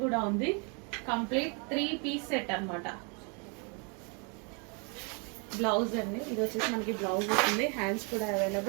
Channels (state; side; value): quieter; left; 35.2 dB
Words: కూడా ఉంది. కంప్లీట్ 3 పీస్ సెట్ అనమాట. బ్లౌజ్ అండి, ఇది వచ్చేసి మనకి బ్లౌజ్ వస్తుంది, హ్యాండ్స్ కూడా